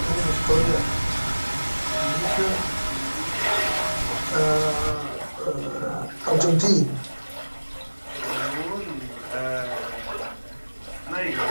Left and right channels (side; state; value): both; inverted; correlation -1.00